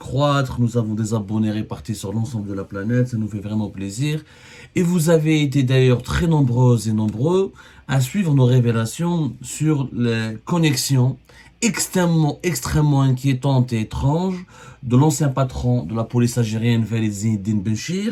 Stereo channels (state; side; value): identical; both; correlation 1.00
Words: nous avons des abonnés répartis sur l'ensemble de la planète, ça nous fait vraiment plaisir. Et vous avez été d'ailleurs très nombreuses et nombreux à suivre nos révélations sur les connexions extrêmement inquiétantes et étranges de l'ancien patron de la police algérienne, Walid Zinedine